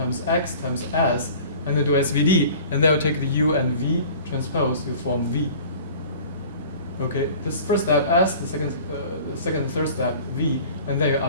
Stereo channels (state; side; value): inverted; both; correlation -0.44